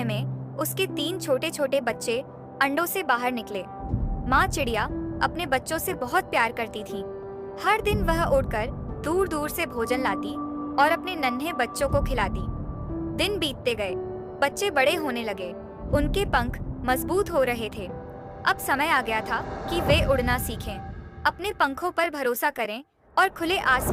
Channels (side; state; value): both; identical; correlation 1.00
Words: में उसके 3 छोटे छोटे बच्चे अंडों से बाहर निकले। माँ चिड़िया अपने बच्चों से बहुत प्यार करती थी। हर दिन वह उड़कर दूर दूर से भोजन लाती और अपने नन्हे बच्चों को खिलाती। दिन बीतते गए, बच्चे बड़े होने लगे, उनके पंख मजबूत हो रहे थे। अब समय आ गया था कि वे उड़ना सीखें, अपने पंखों पर भरोसा करें और खुले